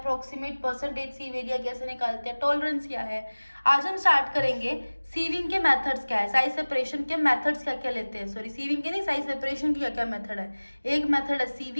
परसेंटेज सीव एरिया कैसे निकालते हैं, टॉलरेंस क्या है। आज हम स्टार्ट करेंगे सीविंग के मेथड्स क्या है, साइज सेपरेशन के मेथड्स क्या क्या लेते हैं, सॉरी सीविंग के नहीं, साइज सेपरेशन की क्या क्या मेथड है। एक मेथड है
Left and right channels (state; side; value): inverted; both; correlation -1.00